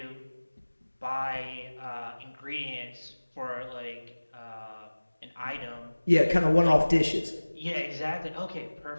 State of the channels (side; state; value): both; inverted; correlation -1.00